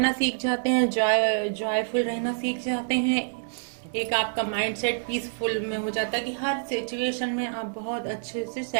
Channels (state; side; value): silent; left; 59 dB below the other